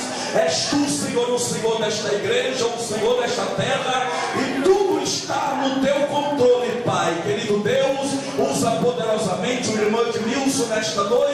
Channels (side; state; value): both; identical; correlation 1.00